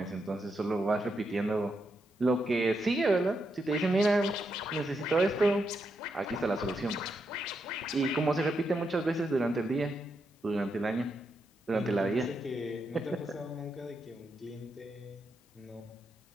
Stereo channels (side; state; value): both; normal; correlation 0.82